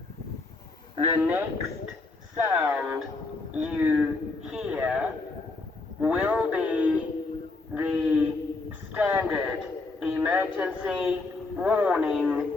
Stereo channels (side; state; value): right; quieter; 3.5 dB